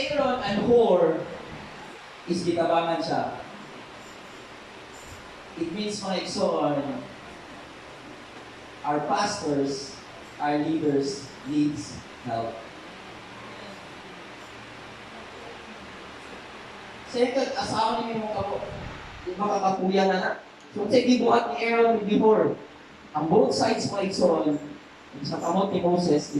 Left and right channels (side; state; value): both; identical; correlation 1.00